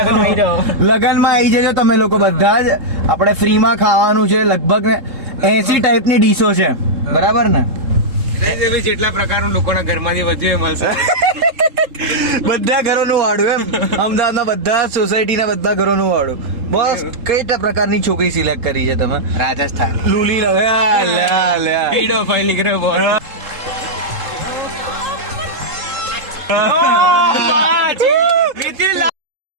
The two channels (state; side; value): late; left; 3.7 ms